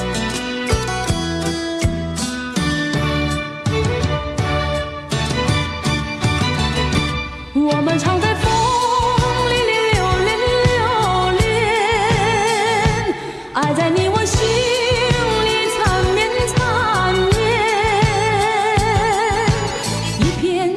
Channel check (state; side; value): identical; both; correlation 1.00